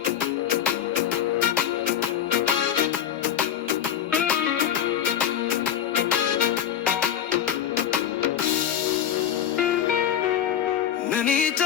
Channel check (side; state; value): right; quieter; 9.6 dB